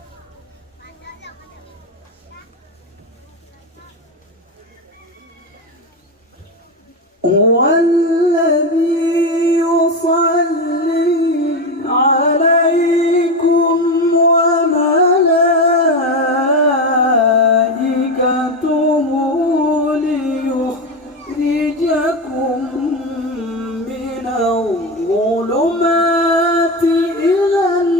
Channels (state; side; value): normal; both; correlation 0.16